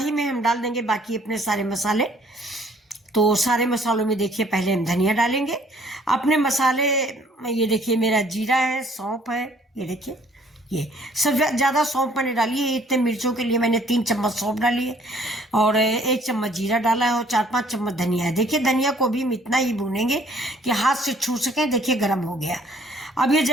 में हम डाल देंगे बाकी अपने सारे मसाले। तो सारे मसालों में देखिए, पहले हम धनिया डालेंगे अपने मसाले। ये देखिए मेरा जीरा है, सौंफ है। ये देखिए, ये सब ज़्यादा सौंफ मैंने डाली है। इतने मिर्चों के लिए मैंने 3 चम्मच सौंफ डाली है, और 1 चम्मच जीरा डाला है, और 4-5 चम्मच धनिया है। देखिए धनिया को भी हम इतना ही भूनेंगे कि हाथ से छू सकें। देखिए गर्म हो गया। अब ये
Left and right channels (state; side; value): normal; both; correlation 0.60